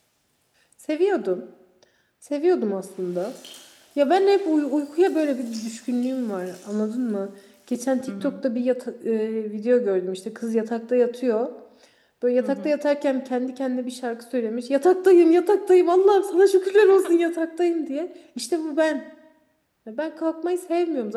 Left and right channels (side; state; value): both; identical; correlation 1.00